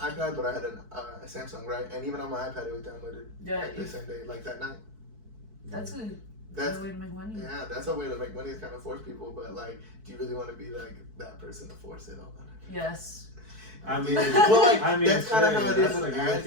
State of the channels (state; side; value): late; left; 4.6 ms